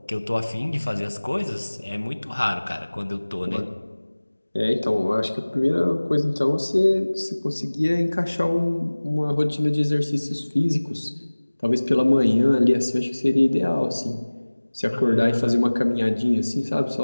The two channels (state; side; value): inverted; both; correlation -1.00